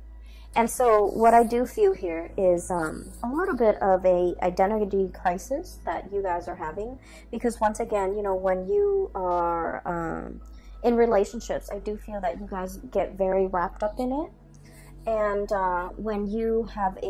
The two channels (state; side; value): identical; both; correlation 1.00